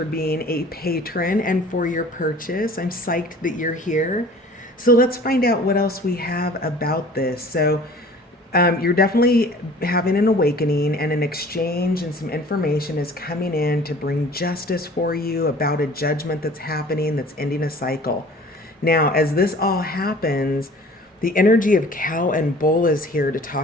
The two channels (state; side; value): normal; both; correlation 0.47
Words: being a patron and for your purchase. I'm psyched that you're here. So let's find out what else we have about this. You're definitely having an awakening, and an exchange and some information is coming in to bring justice for you about a judgment that's happening that's ending a cycle. Now, as this all happens, the energy of cow and bull is here to